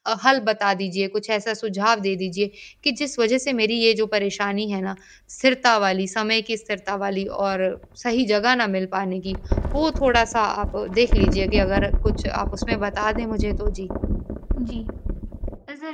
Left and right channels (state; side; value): identical; both; correlation 1.00